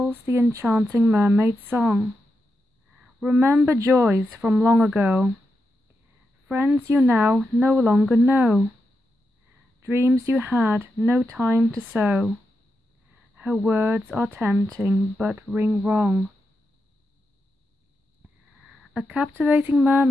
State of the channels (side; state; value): both; normal; correlation 0.87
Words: the enchanting mermaid song. Remember joys from long ago. Friends you now no longer know. Dreams you had no time to sow. Her words are tempting but ring wrong. A captivating